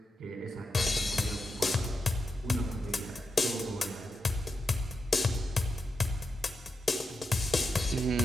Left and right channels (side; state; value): both; normal; correlation 0.87